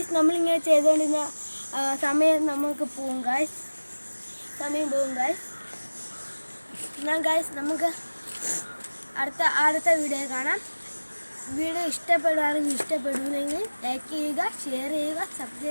നമ്മളിങ്ങനെ ചെയ്തുകൊണ്ടിരുന്ന സമയം പോകും ഗൈസ്. എന്നാൽ ഗൈസ് നമുക്ക് അടുത്ത വീഡിയോ കാണാം. വീഡിയോ ഇഷ്ടപ്പെടുകയാണെങ്കിൽ ലൈക്ക് ചെയ്യുക, ഷെയർ ചെയ്യുക,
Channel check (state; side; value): inverted; both; correlation -1.00